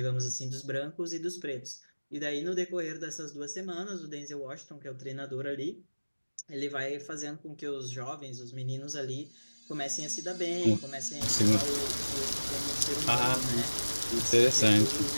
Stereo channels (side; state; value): both; inverted; correlation -1.00